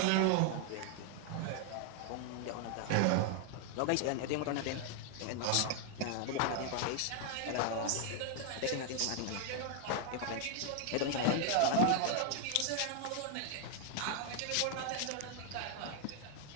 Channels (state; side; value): different; both; correlation 0.00